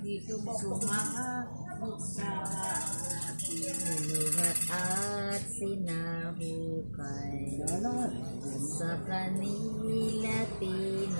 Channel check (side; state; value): both; inverted; correlation -1.00